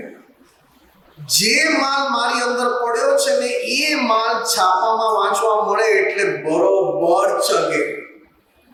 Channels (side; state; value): both; identical; correlation 1.00